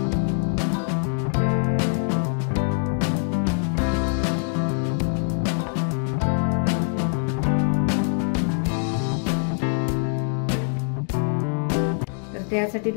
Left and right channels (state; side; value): silent; right; 62 dB below the other